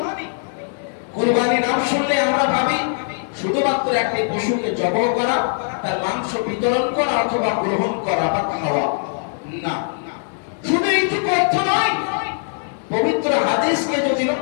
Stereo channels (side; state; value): right; silent; digital silence